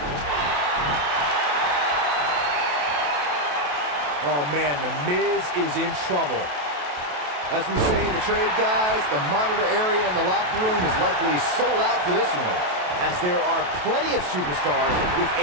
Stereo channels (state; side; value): late; left; 28 ms